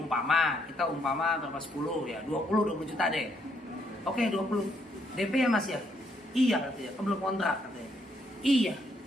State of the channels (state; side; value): normal; both; correlation 0.73